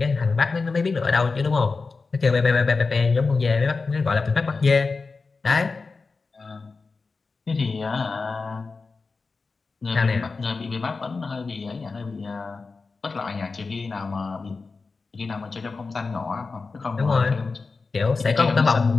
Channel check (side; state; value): right; quieter; 4.2 dB